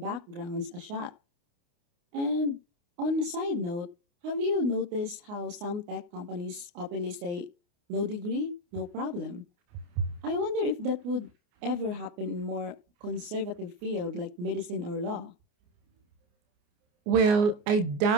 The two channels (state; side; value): late; left; 29 ms